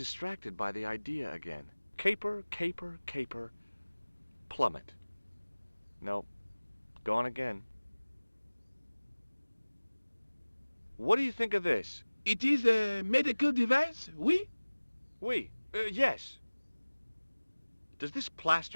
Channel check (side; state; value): both; inverted; correlation -1.00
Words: by the idea again. Caper, caper, caper, plummet. No, gone again. What do you think of this? It is a medical device, oui? Oui, yes. Does this